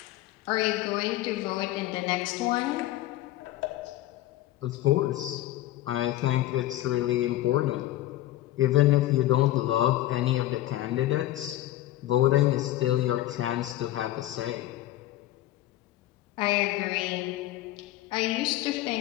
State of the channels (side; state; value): right; quieter; 14.9 dB